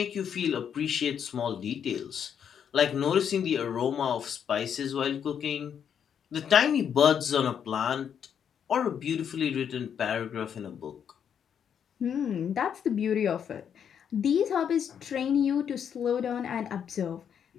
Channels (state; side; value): quieter; right; 8.1 dB